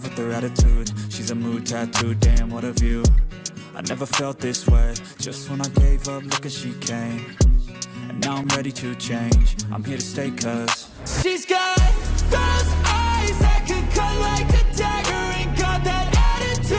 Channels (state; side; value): identical; both; correlation 1.00